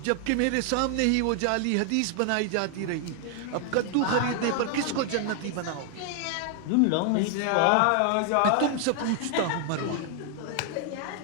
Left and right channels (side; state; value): both; different; correlation 0.00